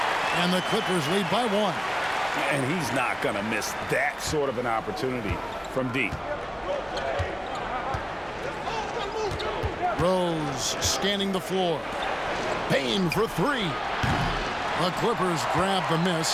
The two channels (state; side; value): identical; both; correlation 1.00